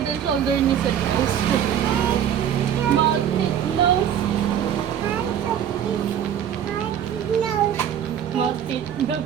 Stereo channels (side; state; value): left; quieter; 9.4 dB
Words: and shoulder ni Sir Nose. Maltit nose. Maltit